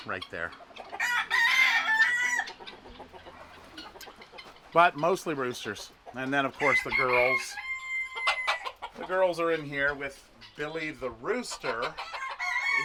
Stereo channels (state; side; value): identical; both; correlation 1.00